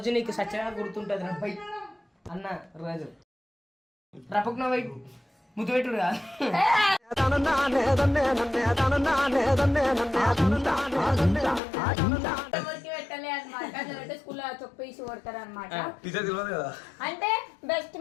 నీకు సత్యంగా గుర్తుంటుంది రప్పై అన్న రోజు రపక్ నవ్వు ముద్దు పెట్టుడు కాదు. అంటే బెస్ట్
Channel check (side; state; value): right; drops out; at 11.6 s